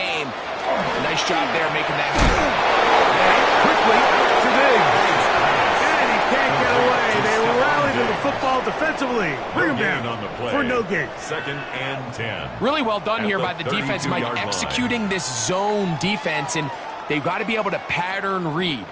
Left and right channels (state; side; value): identical; both; correlation 1.00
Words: Nice job there making that happen. Quickly to Diggs. And he can't get away. They rallied to the football defensively. Bring him down for no gain. Second and 10. Really well done here by the defense, Mike, executing this zone defense, and they've got to be able to pattern read.